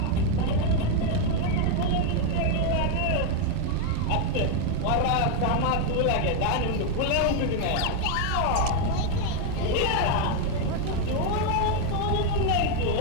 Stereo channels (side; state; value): both; different; correlation 0.01